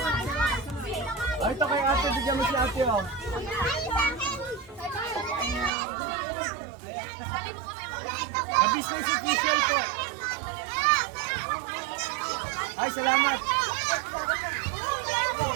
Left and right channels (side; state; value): left; drops out; at 5.7 s